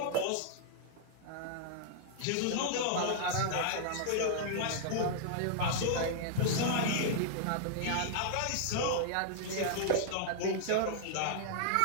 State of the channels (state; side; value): different; both; correlation -0.01